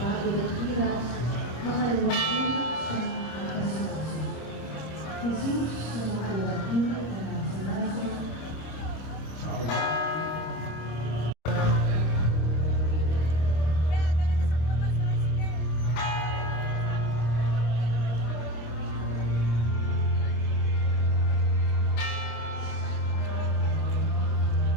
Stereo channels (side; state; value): right; late; 26 ms